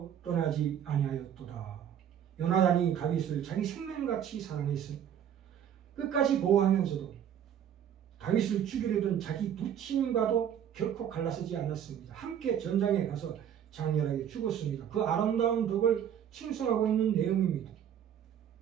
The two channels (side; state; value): left; quieter; 9.4 dB